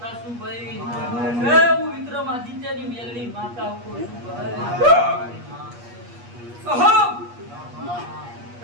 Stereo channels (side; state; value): left; late; 8.4 ms